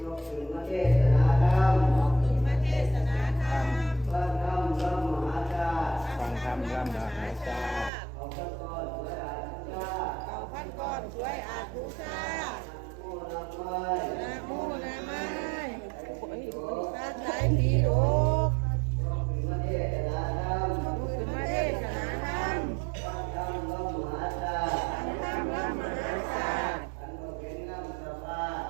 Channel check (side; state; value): left; drops out; at 7.9 s